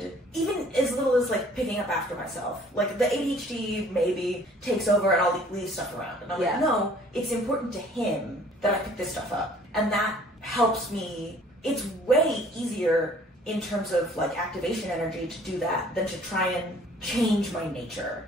even as little as like picking up after myself. Like the ADHD maybe takes over and I'll leave stuff around, and I'm like, no, it's important to him that I pick this stuff up, and that helps me. It's way easier in terms of like activation energy to do that than to try and change my nature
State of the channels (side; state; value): both; normal; correlation 0.55